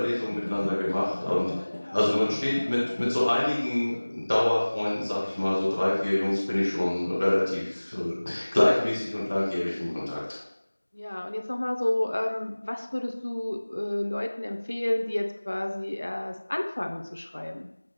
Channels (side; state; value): both; inverted; correlation -1.00